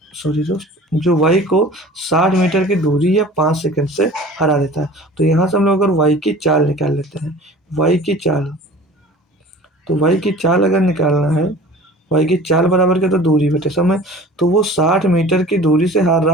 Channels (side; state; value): both; normal; correlation 0.43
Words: दोस्त, जो वाई को 60 मीटर की दूरी या 5 सेकंड से हरा देता है। तो यहाँ से हम लोग अगर वाई की चाल निकाल लेते हैं, वाई की चाल, तो वाई की चाल अगर निकालना है, वाई की चाल बराबर क्या? तो दूरी बटे समय। तो वो 60 मीटर की दूरी से हार